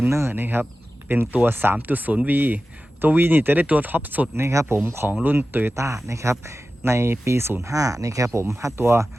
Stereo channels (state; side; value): normal; both; correlation 0.94